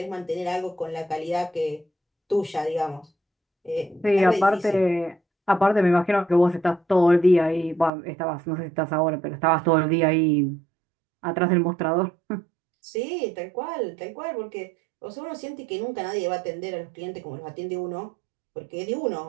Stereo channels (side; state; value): left; drops out; at 7.9 s